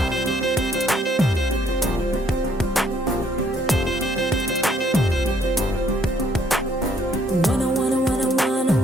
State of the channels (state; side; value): normal; both; correlation 0.66